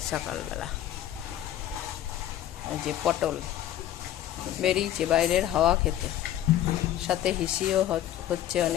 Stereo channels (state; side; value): quieter; right; 12.3 dB